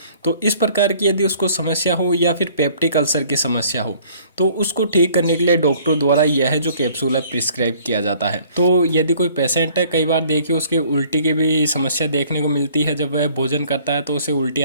तो इस प्रकार की यदि उसको समस्या हो, या फिर पेप्टिक अल्सर की समस्या हो, तो उसको ठीक करने के लिए डॉक्टर द्वारा यह जो कैप्सूल है प्रिस्क्राइब किया जाता है। तो यदि कोई पेशेंट है, कई बार देखिए उसके उल्टी की भी समस्या देखने को मिलती है, जब वह भोजन करता है तो उसे उल्टी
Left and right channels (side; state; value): both; inverted; correlation -0.56